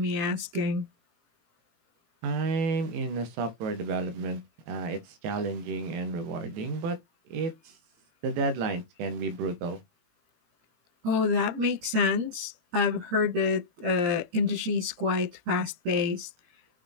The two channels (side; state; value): left; late; 18 ms